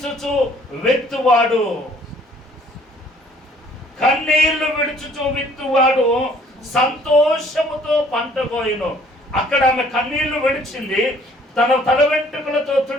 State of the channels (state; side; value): normal; both; correlation 0.58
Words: విత్తువాడు, కన్నీళ్లు విడుచుచు విత్తువాడు సంతోషముతో పంట కోయును. అక్కడ ఆమె కన్నీళ్లు విడిచింది, తన తల వెంట్రుకలతో